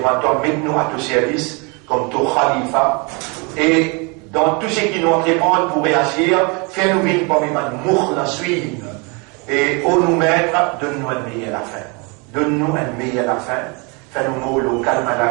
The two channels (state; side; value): quieter; left; 30.8 dB